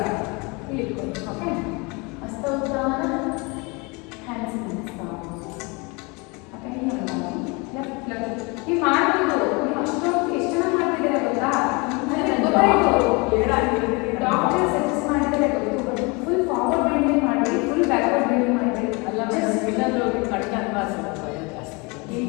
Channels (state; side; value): quieter; right; 28.3 dB